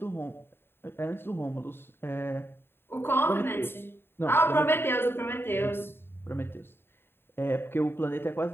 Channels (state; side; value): late; right; 0.11 ms